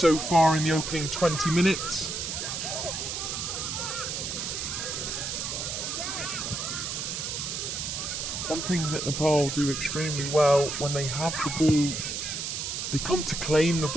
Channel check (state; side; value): noise; right; hiss, 4 dB below the sound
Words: far in the opening 20 minutes. One thing that Nepal do extremely well, when they have the ball, they come to claim the